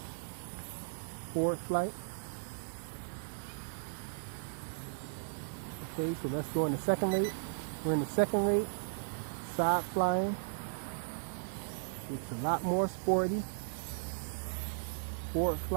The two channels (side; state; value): left; silent; digital silence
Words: Forward flight. Okay, so let's go in the second rate. We're in the second rate. Side flying. It's a lot more sporty. Forward